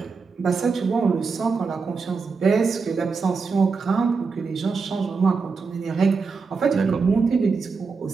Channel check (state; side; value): quieter; left; 4.8 dB